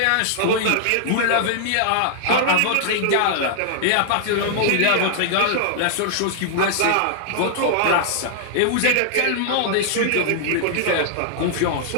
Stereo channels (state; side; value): different; both; correlation -0.01